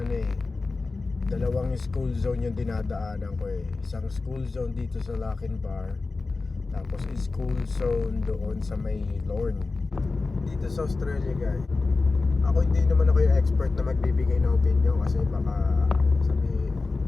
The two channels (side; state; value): right; quieter; 3.8 dB